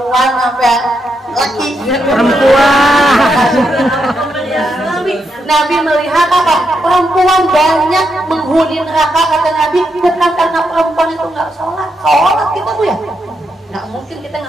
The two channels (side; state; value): both; normal; correlation 0.81